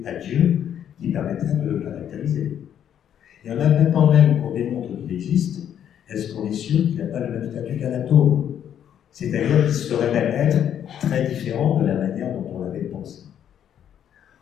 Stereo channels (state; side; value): quieter; right; 9.6 dB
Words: à Dieu qui permettraient de le caractériser. Et en admettant même qu'on démontre qu'il existe, est-ce qu'on est sûr qu'il n'a pas le même statut qu'un atome? C'est-à-dire qu'il serait même être très différent de la manière dont on l'avait pensé.